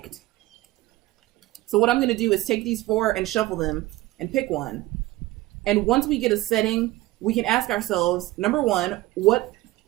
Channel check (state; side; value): quieter; left; 18.2 dB